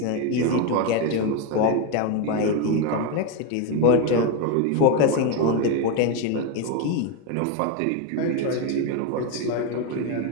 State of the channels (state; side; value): different; both; correlation 0.03